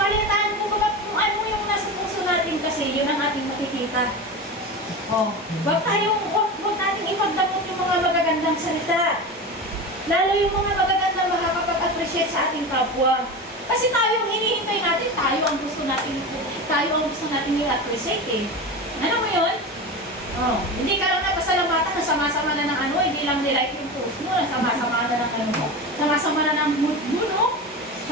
mo ba kung ano yung nasa puso natin kasi yun ang ating makikita. Oh. Huwag natin ipagdamot yung mga magagandang salita. Lalo yung mga magagandang makakapag-appreciate sa ating kapwa. Kasi tayo yung hinihintay natin, tayo ang gusto natin i-appreciate eh. Ano mo yun? Oh. Hindi ka lang napasalamatan na sama-sama na ng hindi lang nilike yung post mo, sama-sama na ng sama-sama na ng mood mo, no?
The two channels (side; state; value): both; normal; correlation 0.25